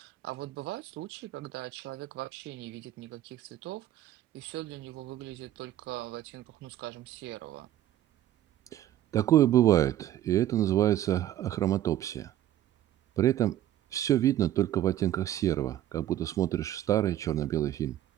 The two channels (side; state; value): left; quieter; 12.6 dB